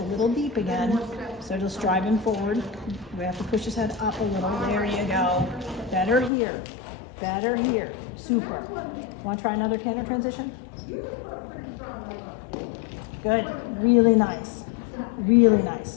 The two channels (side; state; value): right; drops out; at 6.3 s